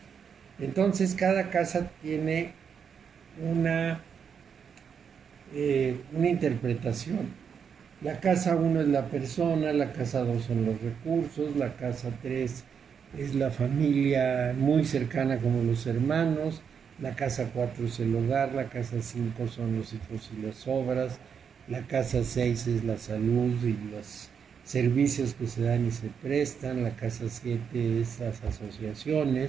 Entonces cada casa tiene una interpretación. La casa 1 es la persona, la casa 2 son los recursos, la casa 3 es la familia muy cercana como los hermanos, la casa 4 es el hogar, la casa 5 son los hijos y las obras, la casa 6 es la salud y los servicios que se dan y se prestan, la casa 7 es las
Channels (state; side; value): quieter; left; 7.0 dB